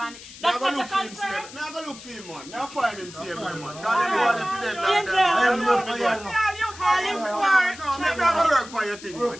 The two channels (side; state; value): left; noise; hiss, 16 dB below the sound